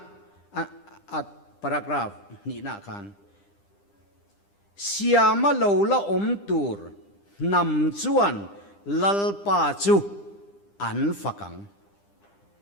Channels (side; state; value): right; late; 10 ms